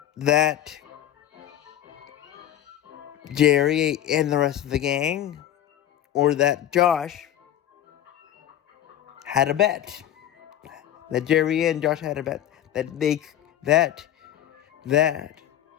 Jerry and the rest of the gang, or that Josh had a bet. That Jerry and Josh had a bet that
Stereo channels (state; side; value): quieter; right; 11.5 dB